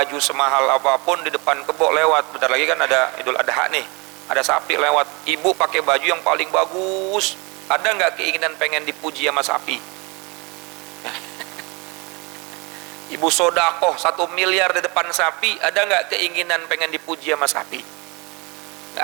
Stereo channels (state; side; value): quieter; left; 28.3 dB